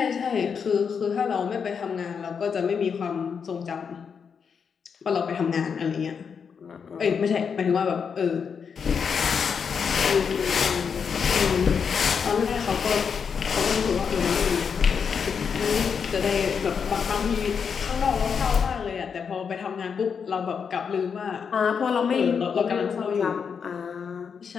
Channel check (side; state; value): right; quieter; 6.4 dB